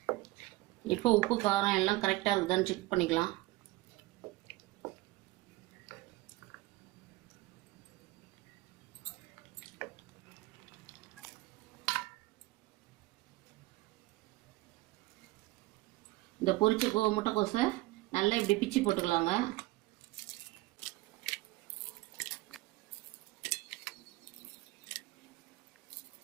இப்போ உப்பு காரம் எல்லாம் கரெக்டாக இருக்குதான்னு செக் பண்ணிக்கலாம். இந்த பொரிச்ச முட்டைக்கோஸை நல்லா இப்படி பிச்சு போட்டுக்கலாங்க.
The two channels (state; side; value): quieter; left; 19.7 dB